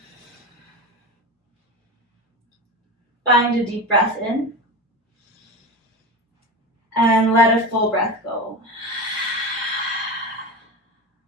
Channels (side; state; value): both; normal; correlation 0.25